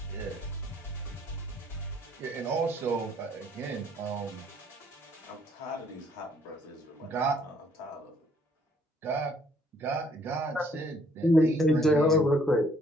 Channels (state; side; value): normal; both; correlation 0.64